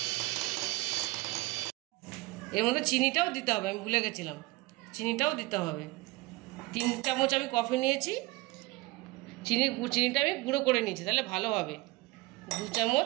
এর মধ্যে চিনিটাও দিতে হবে, আমি ভুলে গেছিলাম, চিনিটাও দিতে হবে। 3 চামচ আমি কফি নিয়েছি, চিনিটা আমি গুঁড়ো করে নিয়েছি, তাহলে ভালো হবে। 2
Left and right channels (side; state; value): left; quieter; 22.0 dB